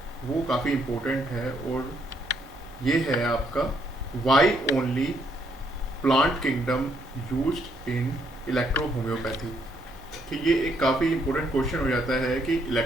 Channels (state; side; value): normal; both; correlation 0.72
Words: वो काफ़ी इम्पोर्टेंट है और ये है आपका why only plant kingdom used in electro homeopathy. कि ये एक काफ़ी इम्पोर्टेंट क्वेश्चन हो जाता है कि